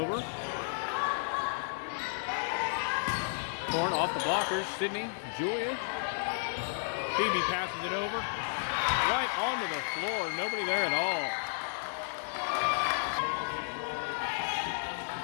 Corn off the blockers. Sydney. Julia. Phoebe passes it over. Right onto the floor. Nobody there at all.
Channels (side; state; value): right; silent; digital silence